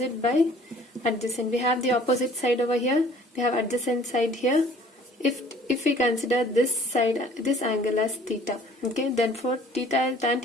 by adjacent. We have the opposite side over here, we have adjacent side here. If we consider this side, this angle as theta, okay, then for theta, tan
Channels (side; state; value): both; normal; correlation 0.53